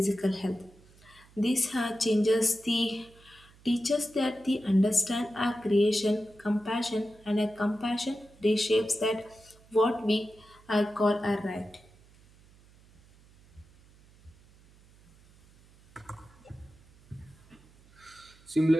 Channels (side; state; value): right; noise; hum, 27 dB below the sound